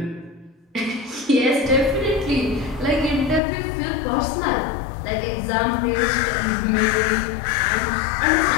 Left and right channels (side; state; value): right; drops out; at 3.4 s